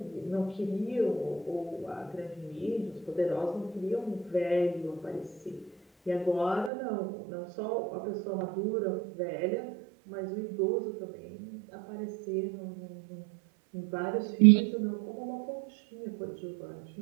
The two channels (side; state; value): left; drops out; at 6.7 s